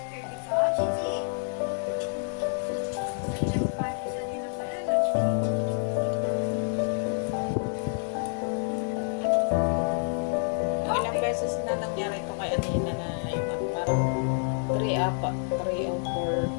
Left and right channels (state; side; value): silent; right; 59 dB below the other